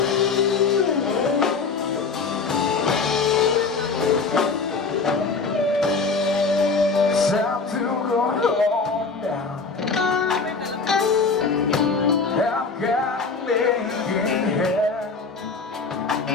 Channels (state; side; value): quieter; right; 4.5 dB